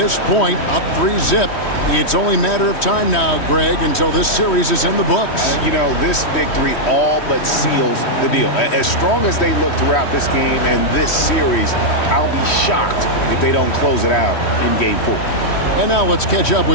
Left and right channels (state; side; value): late; right; 3.1 ms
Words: point, up 3-zip, it's only a matter of time now, Greg, until this series is in the books. You know, this victory all but seals the deal. As strong as they look throughout this game and this series, I'll be shocked if they don't close it out in Game 4. And now let's catch up